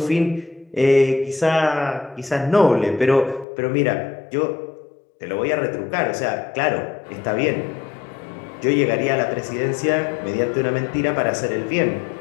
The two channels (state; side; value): drops out; right; at 3.5 s